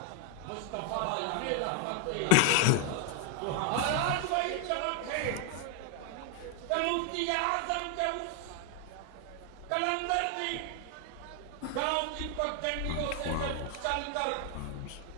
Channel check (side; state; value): both; different; correlation 0.00